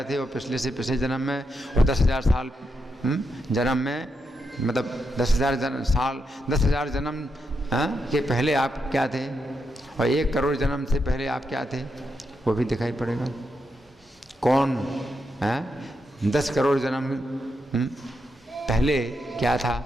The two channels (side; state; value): both; normal; correlation 0.83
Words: थे और पिछले से पिछले जन्म में और 10,000 साल जन्म में मतलब 10,000 जन्म के पहले आप क्या थे, और 1 करोड़ जन्म से पहले आप क्या थे, वो भी दिखाई पड़ेगा। कौन 10 करोड़ जन्म पहले क्या था,